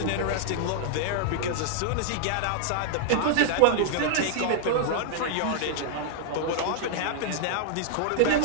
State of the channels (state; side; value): different; both; correlation -0.01